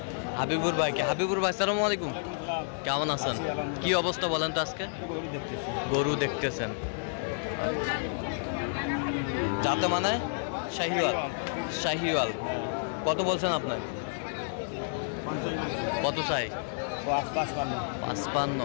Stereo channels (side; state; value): right; silent; digital silence